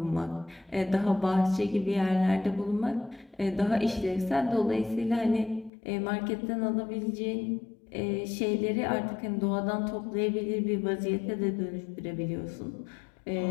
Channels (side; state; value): right; drops out; at 5.7 s